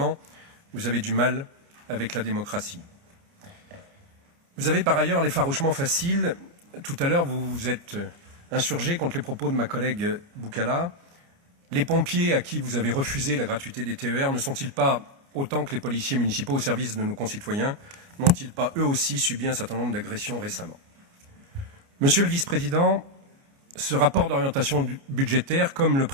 vous avez du mal avec la démocratie. Vous avez par ailleurs l'effarouchement facile. Tout à l'heure, vous vous êtes insurgé contre les propos de ma collègue Boucala. Les pompiers à qui vous avez refusé la gratuité des TER ne sont-ils pas, autant que les policiers municipaux au service de nos concitoyens, n'ont-ils pas eux aussi subi un certain nombre d'agressions récemment? Monsieur le vice-président, ce rapport d'orientation budgétaire, comme le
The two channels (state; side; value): late; left; 29 ms